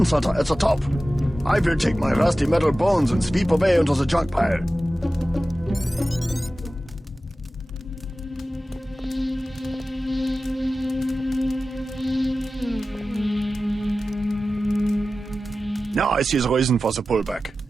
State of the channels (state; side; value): normal; both; correlation 0.95